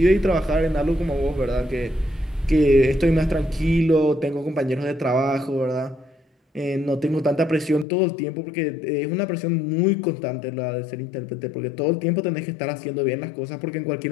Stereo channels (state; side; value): drops out; right; at 7.9 s